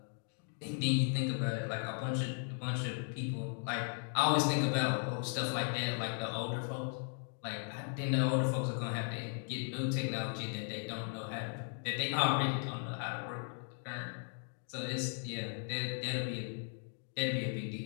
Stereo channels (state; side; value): silent; right; 53 dB below the other